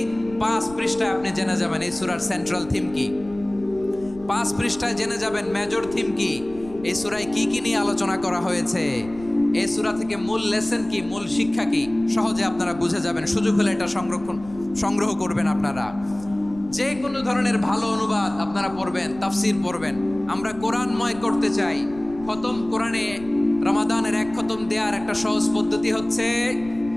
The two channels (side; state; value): left; noise; rumble, 18 dB below the sound